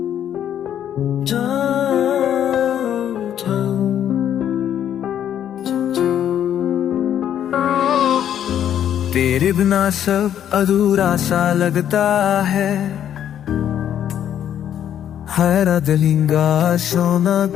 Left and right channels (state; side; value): quieter; right; 10.1 dB